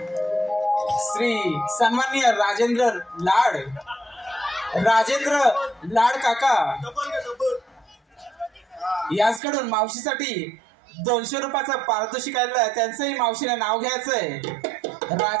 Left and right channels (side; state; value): left; drops out; at 9.4 s